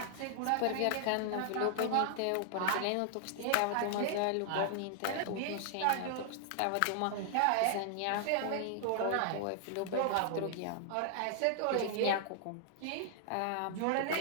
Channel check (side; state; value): both; different; correlation -0.01